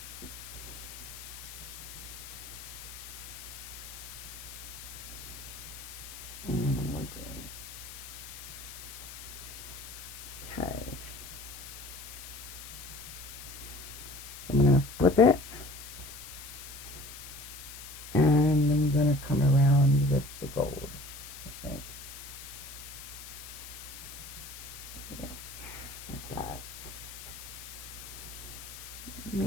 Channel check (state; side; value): noise; left; hiss, 12 dB below the sound